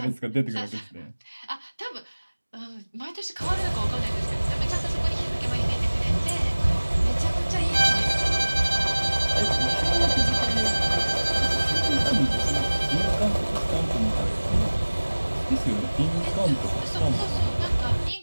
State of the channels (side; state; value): both; inverted; correlation -1.00